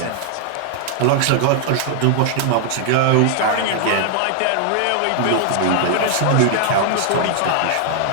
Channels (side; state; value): both; different; correlation 0.00